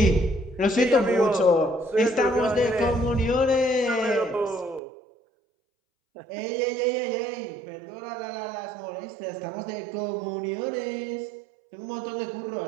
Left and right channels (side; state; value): left; drops out; at 4.8 s